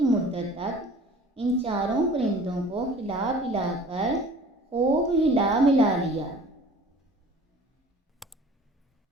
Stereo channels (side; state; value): both; normal; correlation 0.46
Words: مدت تک ان 4 پرندوں کو کھلا پلا کر خوب ہلا ملا لیا۔